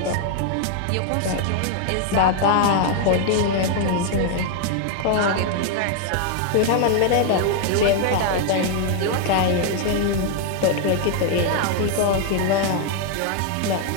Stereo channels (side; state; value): both; different; correlation 0.00